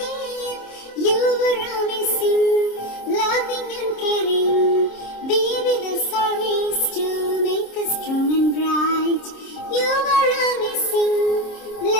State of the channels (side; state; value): right; late; 26 ms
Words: You were amazing, loving and caring. Be with us always to make us strong and bright. You were amazing,